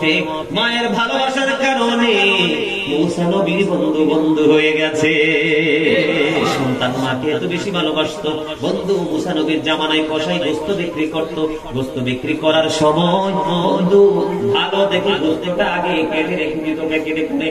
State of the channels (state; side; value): identical; both; correlation 1.00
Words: মায়ের ভালোবাসার কারণে মুসা নবীর বন্ধু হয়ে গেছে। সন্তান মাকে এত বেশি ভালোবাসতো। বন্ধু মুসা নবীর জামানায় কসাই গোস্ত বিক্রি করত। গোস্ত বিক্রি করার সময় বন্ধু ভালো দেখে গোস্তটা আগে কেটে রেখে দিত, কেটে করে